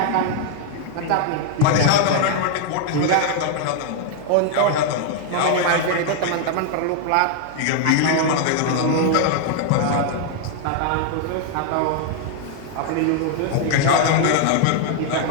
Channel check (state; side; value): different; both; correlation 0.00